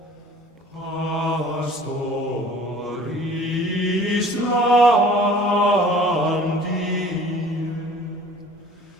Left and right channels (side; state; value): both; normal; correlation 0.49